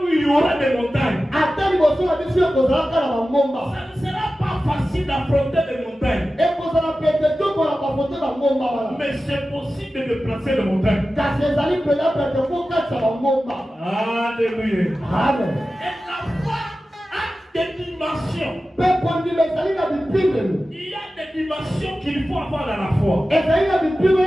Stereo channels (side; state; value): both; normal; correlation 0.94